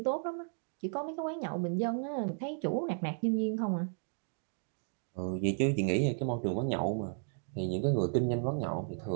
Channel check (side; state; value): left; silent; 55 dB below the other